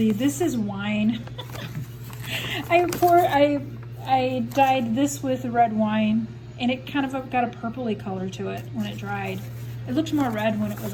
this is wine. I dyed this with red wine, and it kind of got a purpley color to it when it dried. It looked more red when it was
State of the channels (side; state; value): both; identical; correlation 1.00